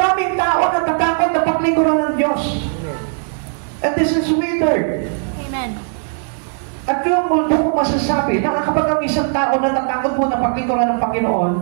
tao natatakot na paglingkuran ng Diyos. And this is withered. Amen. At yung mundo ko masasabi na kapag ang isang tao natatakot mo na paglingkuran ng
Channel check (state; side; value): silent; left; digital silence